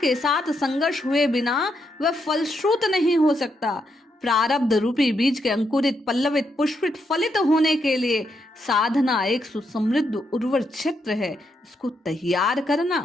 साथ संघर्ष हुए बिना वह फलश्रुत नहीं हो सकता। प्रारब्ध रूपी बीज के अंकुरित, पल्लवित, पुष्पित, फलित होने के लिए साधना एक सुसमृद्ध उर्वर क्षेत्र है। इसको तैयार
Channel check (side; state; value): both; normal; correlation 0.80